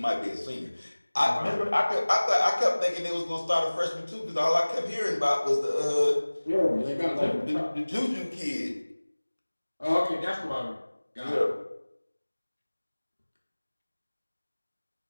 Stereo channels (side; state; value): both; inverted; correlation -1.00